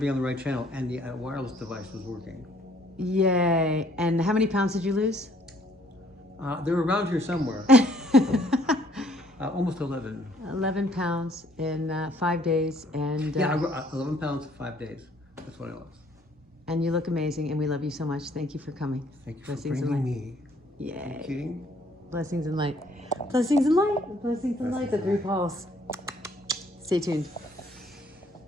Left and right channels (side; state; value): both; normal; correlation 0.63